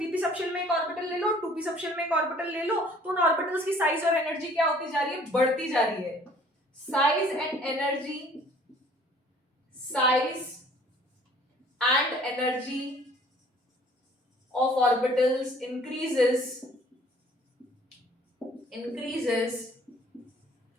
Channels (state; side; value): normal; both; correlation 0.55